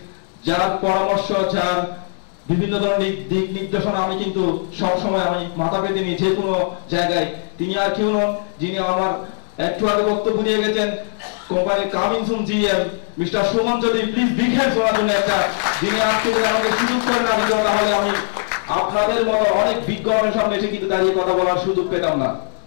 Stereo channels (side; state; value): right; silent; digital silence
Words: যার পরামর্শ, যার বিভিন্ন ধরনের দিক নির্দেশনা আমি কিন্তু সবসময় আমি মাথা পেতে নিই যে কোনো জায়গায়। তিনি আর কেউ নন, যিনি আমার একটু আগে বক্তব্য নিয়ে গেছেন company coming soon GM mister Suman Chowdhury. Please big hands ওনার জন্য একটা, যিনি আজকে আমাকে সুযোগ করে না দিত, তাহলে আমি আপনাদের মতো অনেক বিজ্ঞানের সামনে এসে কিন্তু দাঁড়িয়ে কথা বলার সুযোগ পেতাম না।